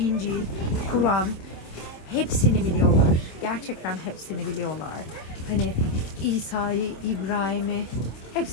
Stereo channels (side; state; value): right; late; 26 ms